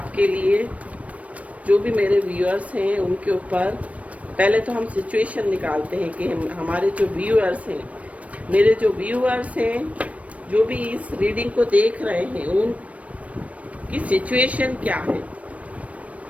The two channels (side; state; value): left; late; 0.066 ms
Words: लिए, जो भी मेरे व्यूअर्स हैं उनके ऊपर। पहले तो हम सिचुएशन निकालते हैं कि हमारे जो व्यूअर्स हैं, मेरे जो व्यूअर्स हैं, जो भी इस रीडिंग को देख रहे हैं, उनकी सिचुएशन क्या है।